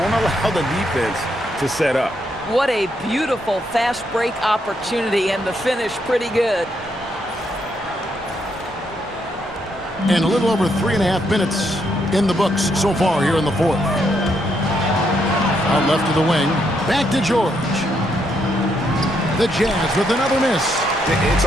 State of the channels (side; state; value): both; normal; correlation 0.76